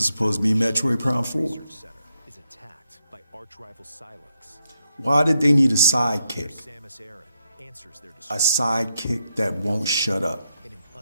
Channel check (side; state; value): both; inverted; correlation -0.82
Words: supposed to be Metroid Prime 4. Why did they need a sidekick? A sidekick that won't shut up.